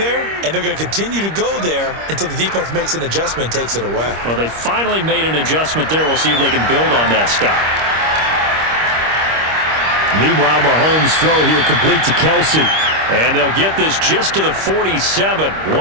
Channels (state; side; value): late; left; 25 ms